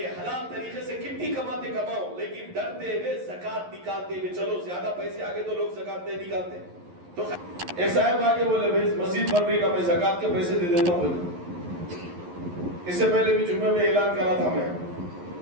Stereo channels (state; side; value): late; left; 11 ms